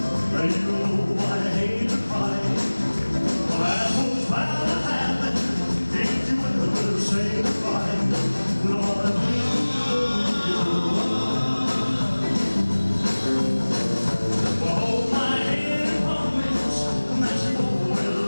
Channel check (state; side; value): inverted; both; correlation -1.00